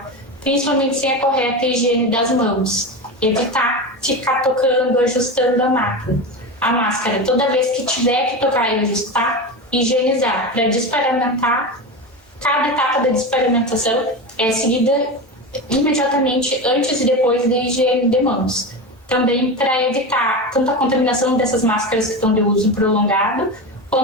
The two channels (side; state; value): both; normal; correlation 0.22